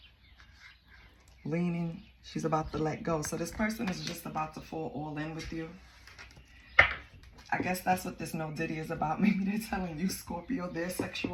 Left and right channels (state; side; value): identical; both; correlation 1.00